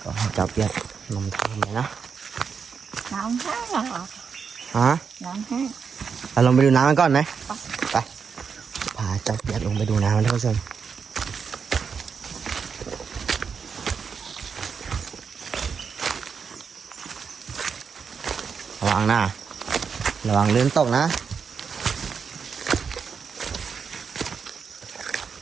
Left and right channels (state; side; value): quieter; left; 6.1 dB